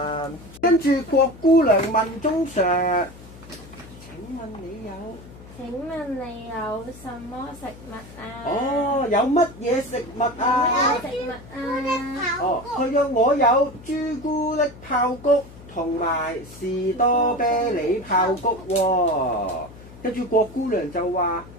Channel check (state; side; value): noise; left; hum, 18 dB below the sound